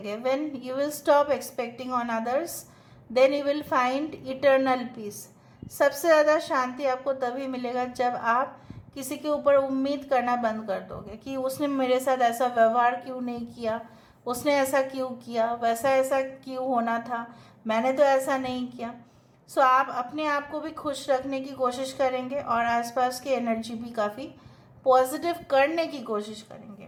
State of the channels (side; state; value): both; identical; correlation 1.00